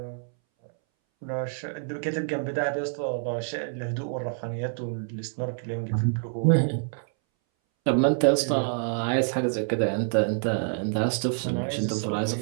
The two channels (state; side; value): silent; left; 60 dB below the other